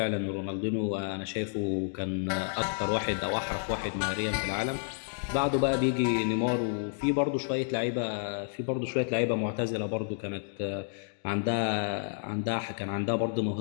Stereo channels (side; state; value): right; silent; digital silence